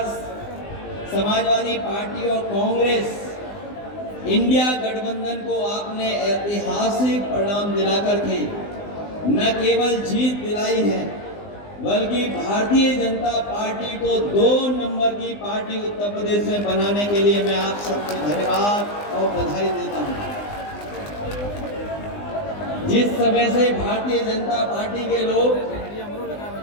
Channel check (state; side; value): late; right; 20 ms